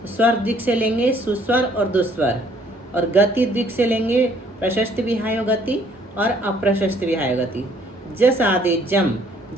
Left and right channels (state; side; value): normal; both; correlation 0.62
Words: स्वर द्विक से लेंगे सुस्वर और दुस्वर, और गति द्विक से लेंगे प्रशस्त विहायो गति और अप्रशस्त विहायो गति। जस आदेजम,